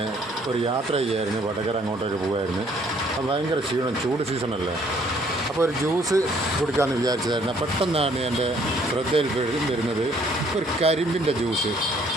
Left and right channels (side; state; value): both; normal; correlation 0.62